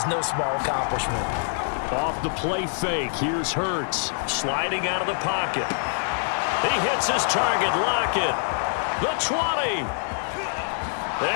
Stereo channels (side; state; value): right; silent; digital silence